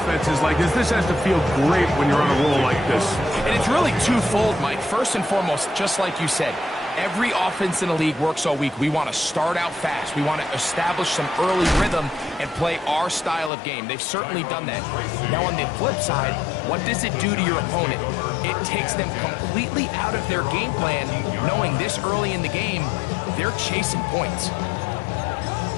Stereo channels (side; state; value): right; drops out; at 13.5 s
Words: like this. This has to feel great when you're on a roll like this. And it's really twofold, Mike. First and foremost, just like you said, every offense in the league works all week. We want to start out fast. We want to establish some early rhythm and play our style of game. They've certainly done that. Now, on the flip side, what does it do to your opponent? It takes them completely out of their game plan, knowing this early in the game, they're chasing points.